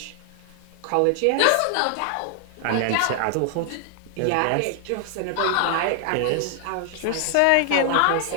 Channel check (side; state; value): both; different; correlation 0.00